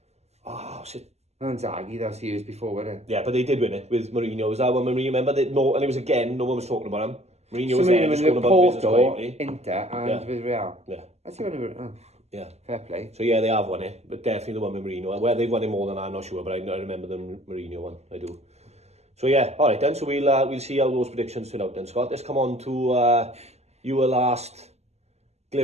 what's it? Inzaghi, that was years before, wasn't it? Yeah, but they did win it with Mourinho. Was that when Mourinho? Remember that? No, and it was again. No one was talking about him. Mourinho was there, just going about business quietly. Inter, and with Real. Yeah. That's the one. Yeah. Fair play. So yeah, they have won it, but definitely the one with Mourinho. Where they've won it more than I'm not sure, but I remember the Mourinho one. I do. So yeah, all right then. So we'll see how those predictions turn out then, Scott. Let's come on to your last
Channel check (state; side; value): late; left; 0.31 ms